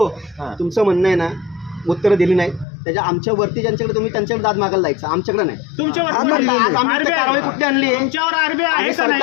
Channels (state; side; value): drops out; right; at 2.7 s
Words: तुमचं म्हणणं आहे ना, उत्तर दिली नाही त्याच्या आमच्या वरती ज्यांच्याकडे तुम्ही त्यांच्याकडे दाद मागायला जायचं, आमच्याकडे नाही. तुमच्यावर कारवाई कुठली आणली आहे? तुमच्यावर आरबीआय आहे का नाही?